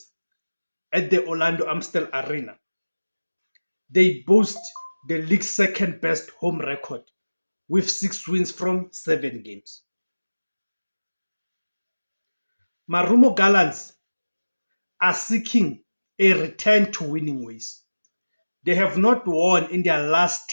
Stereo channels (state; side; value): inverted; both; correlation -1.00